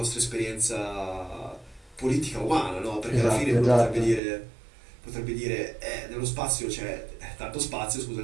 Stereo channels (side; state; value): left; drops out; at 4.2 s